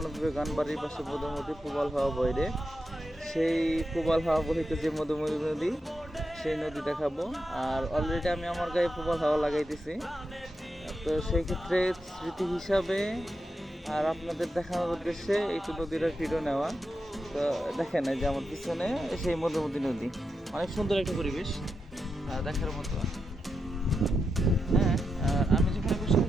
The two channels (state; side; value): normal; both; correlation 0.87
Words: গান বাড়ির পাশে মধুমতি প্রবাল হাওয়া বইরে সেই প্রবাল হাওয়া বহিতে যে মধুমতি নদী, সেই নদী দেখাবো। আর অলরেডি আমি আমার গায়ে প্রবাল হাওয়া লাগাইতেছি, তো সেই ক্ষেত্রে স্মৃতি হিসাবে আর আপনাদের দেখানোর উদ্দেশ্যে একটু নদীর ভিডিও নেওয়া। তো দেখেন এই যে আমার পিছনে সেই মধুমতি নদী, অনেক সুন্দর একটা পরিবেশ দেখার মতো। হ্যাঁ, আর আমি যেখানে বসে